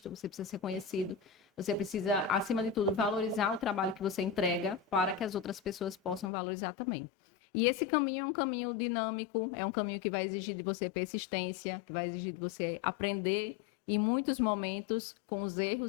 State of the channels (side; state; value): right; drops out; at 6.3 s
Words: você precisa ser conhecido, você precisa, acima de tudo, valorizar o trabalho que você entrega para que as outras pessoas possam valorizar também. E esse caminho é um caminho dinâmico, é um caminho que vai exigir de você persistência, que vai exigir de você aprender em muitos momentos, com os